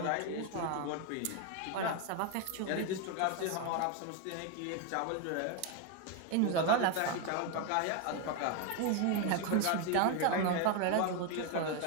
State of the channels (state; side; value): different; both; correlation 0.01